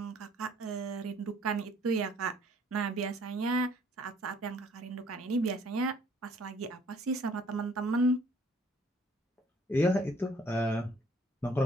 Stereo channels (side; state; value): both; normal; correlation 0.59